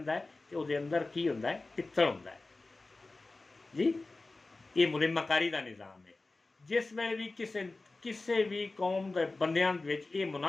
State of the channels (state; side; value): quieter; right; 3.3 dB